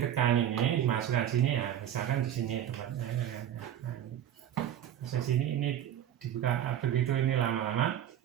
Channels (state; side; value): quieter; left; 10.7 dB